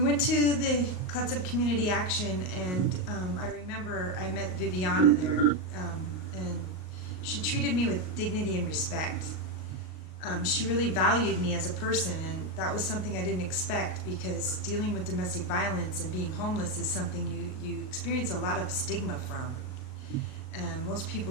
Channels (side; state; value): right; late; 38 ms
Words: went to the Clatsop Community Action, and I remember I met Viviana there, and she treated me with dignity and respect. She really valued me as a person, and that was something I didn't expect, because dealing with domestic violence and being homeless is something you experience a lot of stigma from. Most